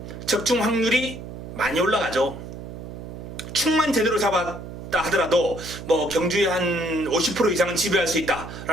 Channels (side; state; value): right; noise; hum, 11 dB below the sound